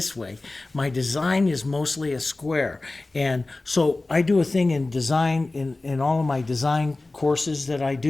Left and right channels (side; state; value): right; quieter; 3.1 dB